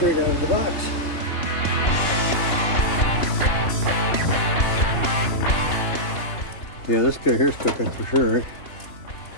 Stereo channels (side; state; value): right; late; 3.0 ms